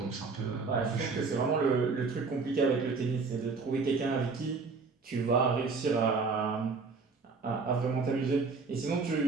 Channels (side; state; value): left; quieter; 4.5 dB